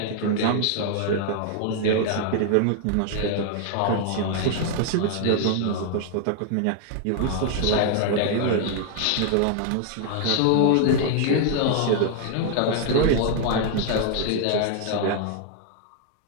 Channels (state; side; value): different; both; correlation 0.00